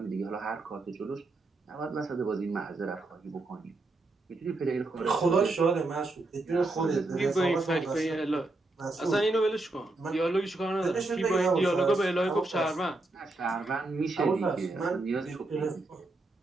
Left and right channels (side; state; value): left; quieter; 3.1 dB